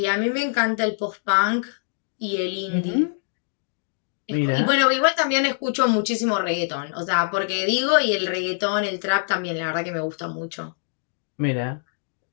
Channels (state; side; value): silent; right; digital silence